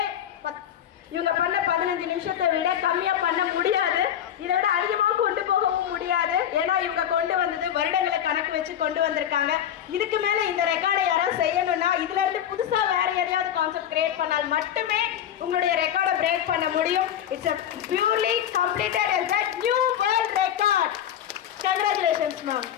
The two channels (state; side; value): quieter; right; 10.1 dB